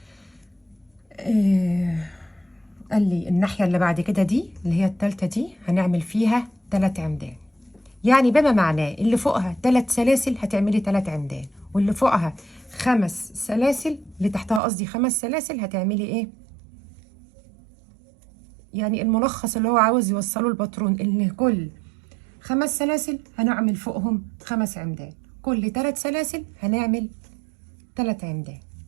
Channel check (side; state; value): left; drops out; at 14.6 s